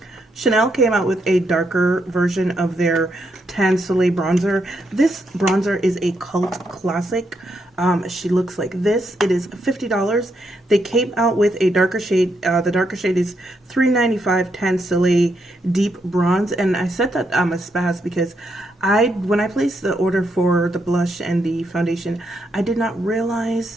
Chanel came out with a darker version of their Tan Soleil bronzer. This bronzer is a cult classic. She looks like this. It is $50. They came out with a darker shade. The darker shade is $3.95 Tan Soleil Deep Bronze. And I said that I'm a spaz because when I placed the order for the blush and the foundation, I did not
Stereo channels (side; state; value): both; normal; correlation 0.79